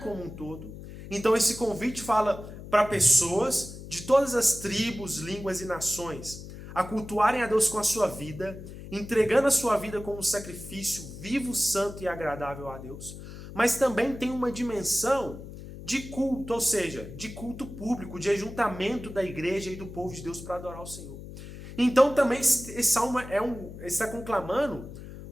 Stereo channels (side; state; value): left; noise; hum, 13 dB below the sound